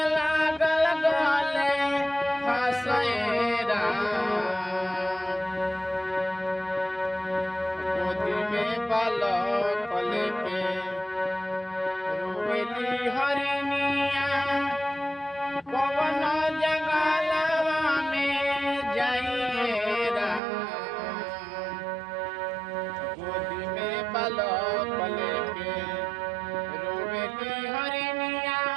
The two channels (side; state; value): left; drops out; at 20.4 s